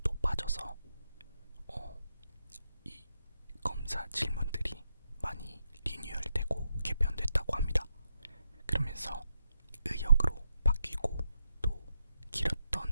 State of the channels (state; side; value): inverted; both; correlation -0.83